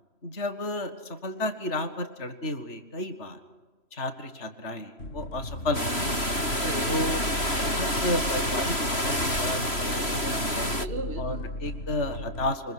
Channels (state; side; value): late; right; 3.0 ms